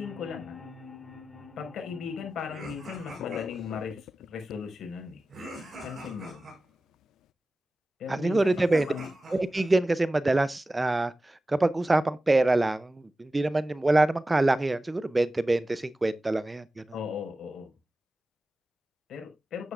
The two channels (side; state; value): both; normal; correlation 0.95